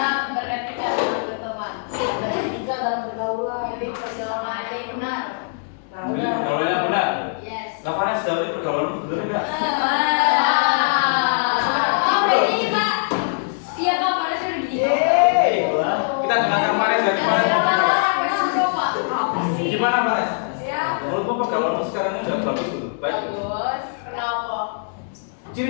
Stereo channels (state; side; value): silent; right; digital silence